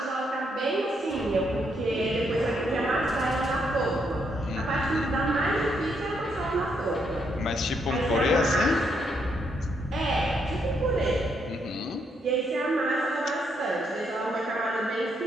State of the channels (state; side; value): normal; both; correlation 0.76